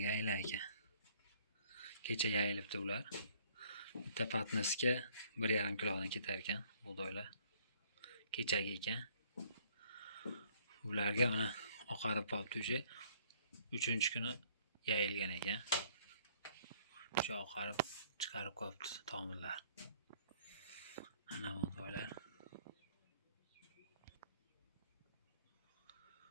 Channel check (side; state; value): both; inverted; correlation -0.60